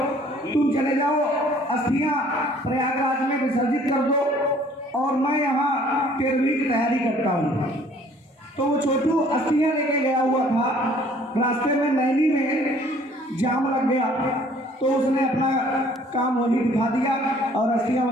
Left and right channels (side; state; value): both; normal; correlation 0.56